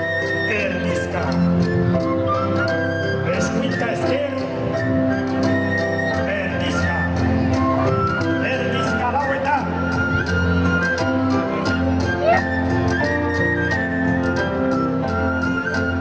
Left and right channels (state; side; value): identical; both; correlation 1.00